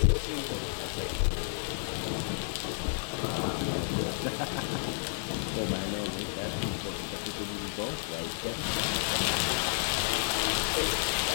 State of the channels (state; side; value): silent; right; digital silence